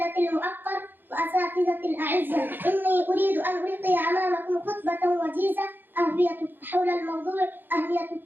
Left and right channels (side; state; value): left; late; 0.094 ms